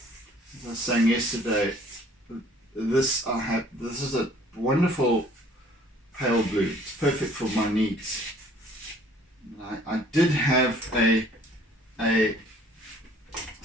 as I was saying yesterday, this is a wonderful pale blue. It's perfect for my needs. I did have a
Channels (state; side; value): normal; both; correlation 0.56